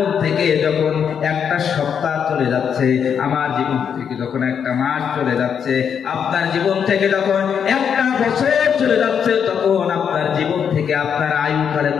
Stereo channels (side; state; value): right; quieter; 7.5 dB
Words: থেকে যখন একটা সপ্তাহ চলে যাচ্ছে, আমার জীবন থেকে যখন একটা মাস চলে যাচ্ছে, আপনার জীবন থেকে যখন একটা বছর চলে যাচ্ছে, তখন আপনার জীবন থেকে আপনার আয়ু খালি